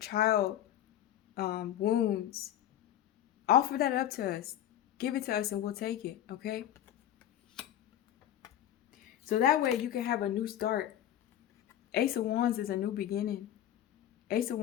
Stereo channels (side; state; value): right; quieter; 11.5 dB